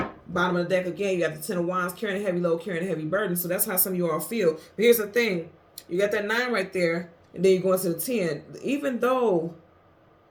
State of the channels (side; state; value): both; identical; correlation 1.00